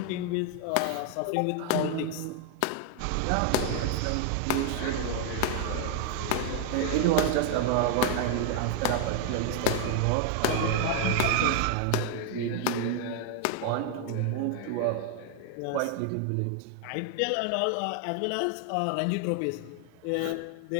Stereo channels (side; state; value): both; different; correlation 0.00